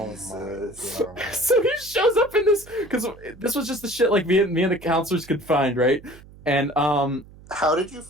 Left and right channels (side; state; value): right; noise; hum, 21 dB below the sound